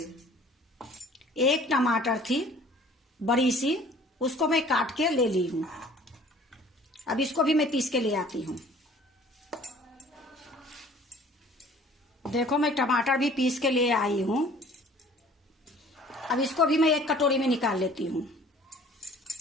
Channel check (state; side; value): normal; both; correlation 0.51